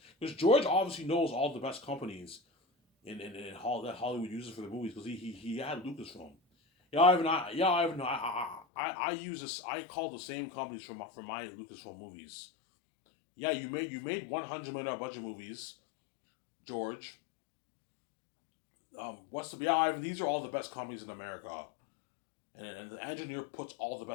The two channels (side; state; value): right; drops out; at 8.7 s